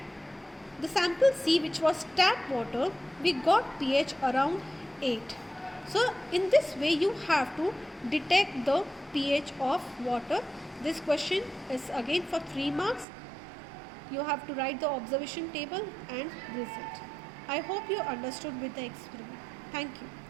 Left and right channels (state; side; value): drops out; left; at 13.1 s